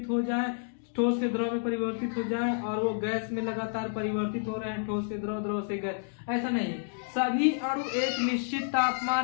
हो जाए, ठोस से द्रव में परिवर्तित हो जाए, और वो गैस में लगातार परिवर्तित हो रहे हैं, ठोस से द्रव, द्रव से गैस। ऐसा नहीं है। सभी अणु एक निश्चित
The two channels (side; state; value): right; silent; digital silence